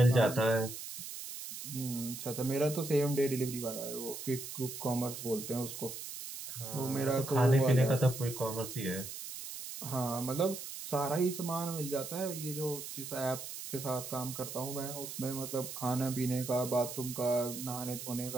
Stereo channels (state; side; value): noise; right; hiss, 9 dB below the sound